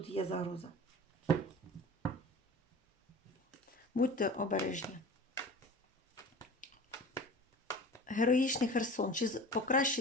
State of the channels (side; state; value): both; normal; correlation 0.37